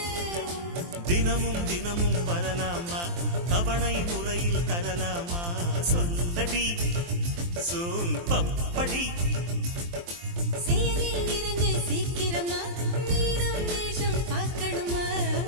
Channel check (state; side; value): late; left; 23 ms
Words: தினமும் தினமும் வரலாமா தவணை முறையில் தரலாமா சொல்லடி சோன் பப்படி செயலில் இறங்கு சீக்கிரமா மீனம் நேசம் பார்க்கணுமா